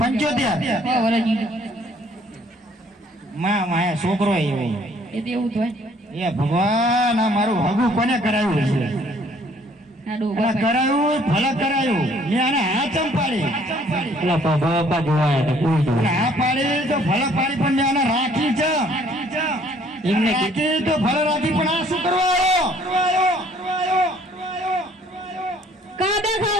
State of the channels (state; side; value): normal; both; correlation 0.60